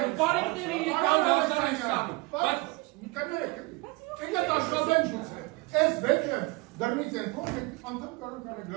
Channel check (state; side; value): quieter; left; 24.4 dB